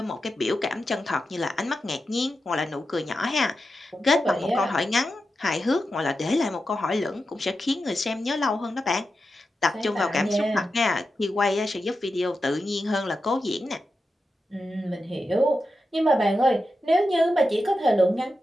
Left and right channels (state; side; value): normal; both; correlation 0.90